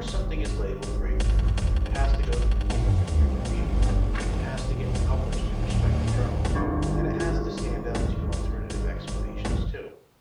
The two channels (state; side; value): identical; both; correlation 1.00